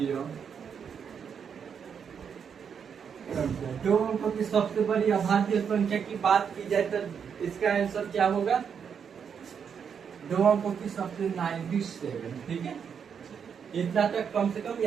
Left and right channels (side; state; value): left; quieter; 7.1 dB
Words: संख्या। 2 अंकों की सबसे बड़ी अभाज्य संख्या की बात की जाए तो इसका आंसर क्या होगा? 2 अंकों की सबसे 97। ठीक है। इतना तक कम से कम